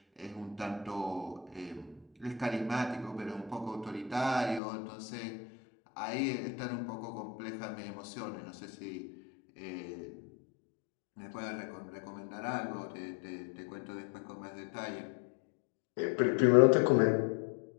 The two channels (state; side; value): drops out; right; at 4.6 s